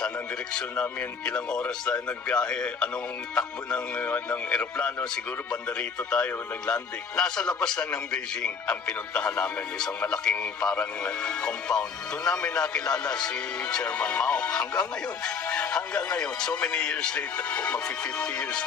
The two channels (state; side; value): quieter; right; 5.8 dB